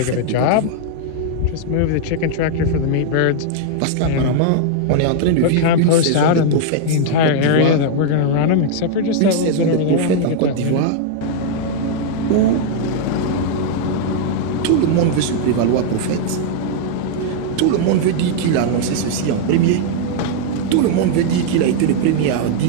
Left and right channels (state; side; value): different; both; correlation -0.01